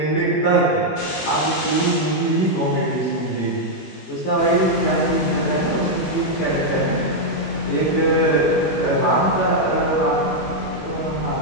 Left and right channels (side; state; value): right; late; 21 ms